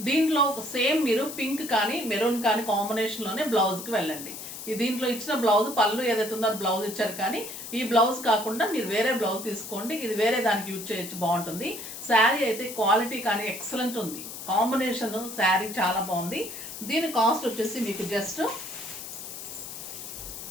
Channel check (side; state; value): left; noise; hiss, 10 dB below the sound